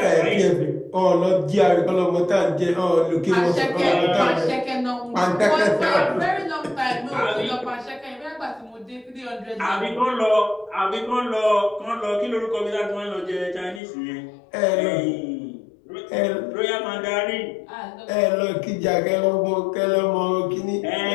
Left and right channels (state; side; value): drops out; right; at 13.8 s